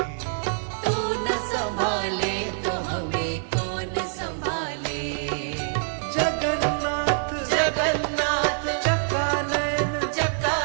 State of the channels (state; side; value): silent; left; digital silence